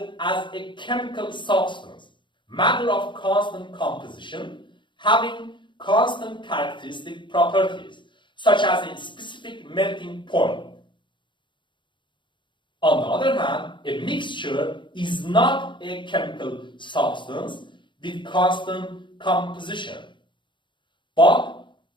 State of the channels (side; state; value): right; late; 0.23 ms